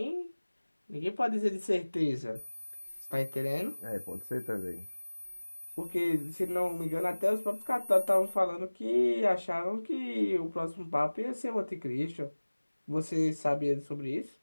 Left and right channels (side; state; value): both; inverted; correlation -1.00